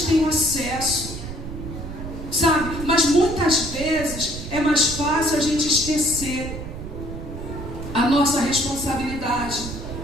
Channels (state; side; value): noise; right; rumble, 9 dB below the sound